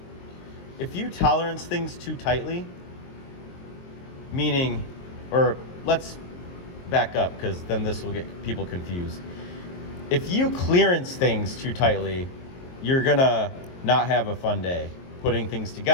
if you tolerance things too tightly, meaning, or let's back up, because then this will get people confused. If you clearance things too tightly, you're gonna not have a fun day putting things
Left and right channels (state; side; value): late; right; 23 ms